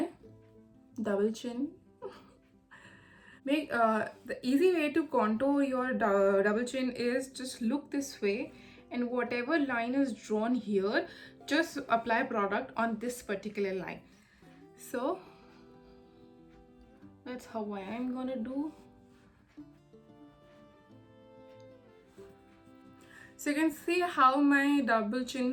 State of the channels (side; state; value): both; identical; correlation 1.00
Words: double chin. The easy way to contour your double chin is just look this way, and whatever line is drawn here, just apply product on this particular line. So that's how I'm gonna do. So you can see how my double